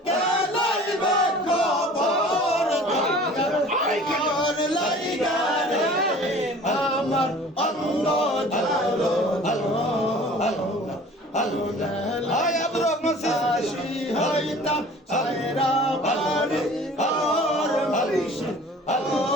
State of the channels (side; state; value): both; normal; correlation 0.46